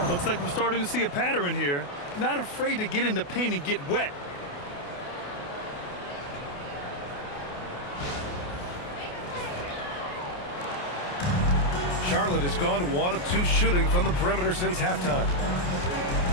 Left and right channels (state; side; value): late; right; 28 ms